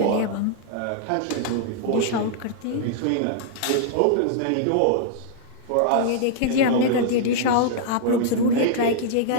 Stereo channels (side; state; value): both; different; correlation -0.01